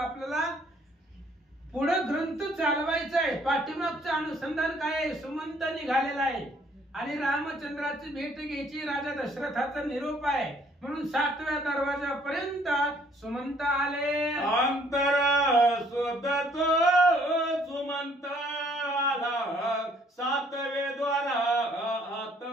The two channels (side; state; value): both; normal; correlation 0.62